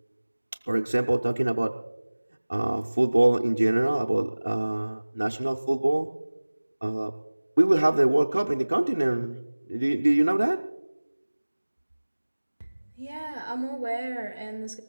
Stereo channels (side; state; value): both; inverted; correlation -1.00